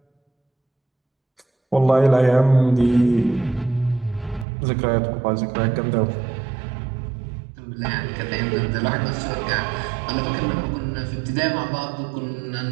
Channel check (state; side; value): drops out; left; at 4.5 s